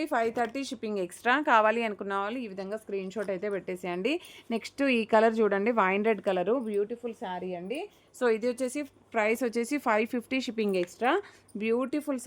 530 shipping extra. కావాలి అనుకున్న వాళ్ళు ఈ విధంగా స్క్రీన్ షాట్ అయితే పెట్టేసేయండి. నెక్స్ట్ ఈ కలర్ చూడండి, wine red colour, beautiful sari అండి. సో ఇది వచ్చేసి ప్రైస్ వచ్చేసి 550 షిప్పింగ్ ఎక్స్ట్రా. బ్యూటిఫుల్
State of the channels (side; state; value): both; identical; correlation 1.00